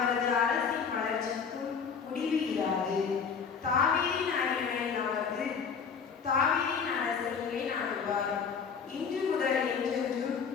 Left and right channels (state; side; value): quieter; right; 6.2 dB